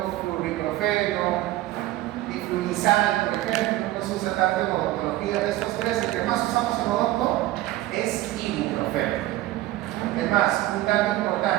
flurbiprofeno, diflunisal, por ejemplo, no se usa tanto en odontología. De estos tres, el que más usamos en odonto es ibuprofeno. Es más, un dato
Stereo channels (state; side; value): quieter; left; 16.1 dB